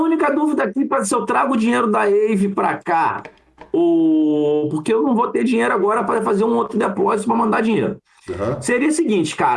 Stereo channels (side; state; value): both; identical; correlation 1.00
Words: dúvida aqui para se eu trago o dinheiro da Ave para cá, ou porque eu não vou ter dinheiro agora para fazer um outro depósito para mandar dinheiro. Aham. Seria o seguinte,